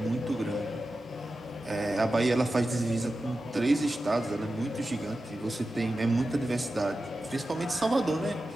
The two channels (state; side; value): normal; both; correlation 0.93